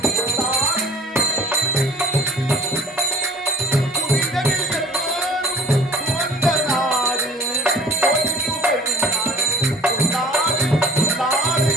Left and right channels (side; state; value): both; normal; correlation 0.50